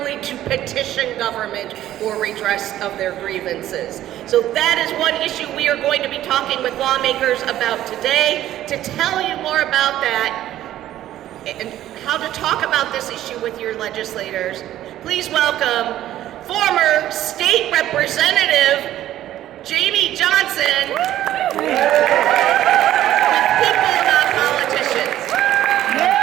to petition government for redress of their grievances. So that is one issue we are going to be talking with lawmakers about today. To tell you more about that and how to talk about this issue with your legislators, please welcome former state representative Jamie Johnson with People Not Politicians. Boo.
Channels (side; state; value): left; quieter; 13.1 dB